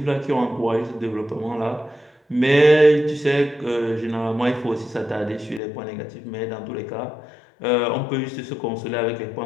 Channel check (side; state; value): right; drops out; at 5.6 s